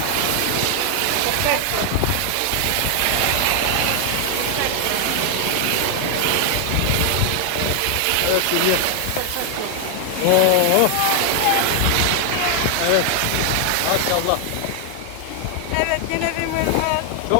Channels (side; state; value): both; different; correlation 0.00